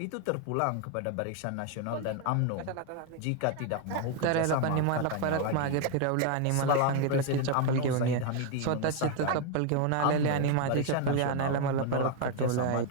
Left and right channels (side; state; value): both; different; correlation 0.01